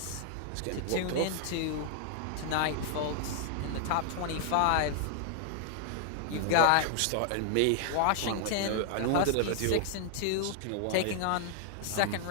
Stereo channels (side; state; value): both; different; correlation 0.00